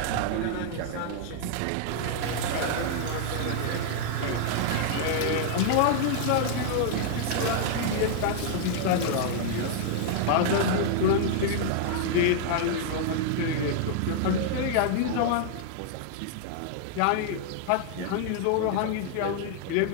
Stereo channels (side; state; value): both; different; correlation -0.01